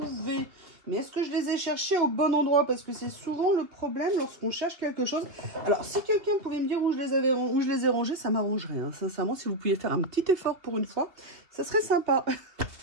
Mais est-ce que je les ai cherchés au bon endroit? Parce que c'est souvent le problème lorsqu'on cherche quelque chose. Alors, si quelqu'un pouvait me dire où je les ai rangés, ça m'arrangerait. Hein. Sincèrement, si vous pouviez faire un petit effort pour une fois, ça serait sympa.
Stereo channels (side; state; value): left; late; 2.5 ms